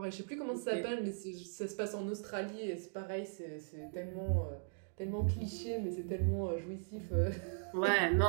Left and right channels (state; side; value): silent; left; digital silence